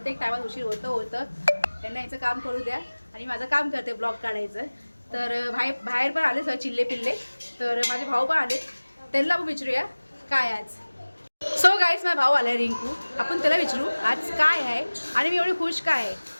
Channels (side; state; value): both; inverted; correlation -1.00